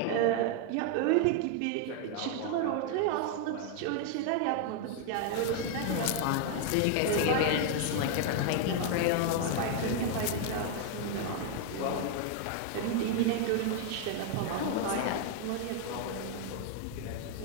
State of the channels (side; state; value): both; different; correlation 0.01